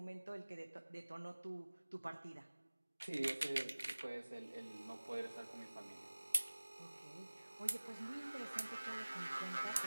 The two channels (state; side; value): inverted; both; correlation -1.00